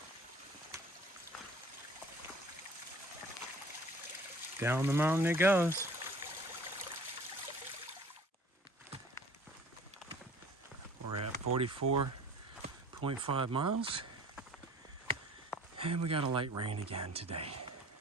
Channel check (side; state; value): both; normal; correlation 0.48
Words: Down the mountain it goes. We're at 44.5 miles. And we got a light rain again today.